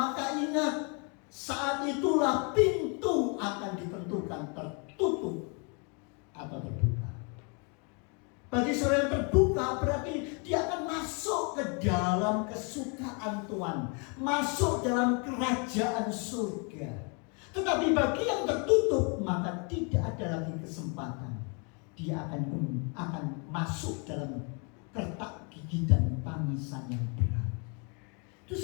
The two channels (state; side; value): quieter; right; 35.0 dB